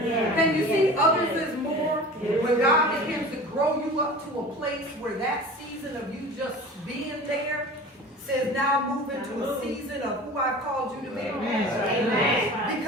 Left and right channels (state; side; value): normal; both; correlation 0.38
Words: you see others as more? When God begins to grow you up to a place where that season of you just being there says now move into a season of who I've called you to be.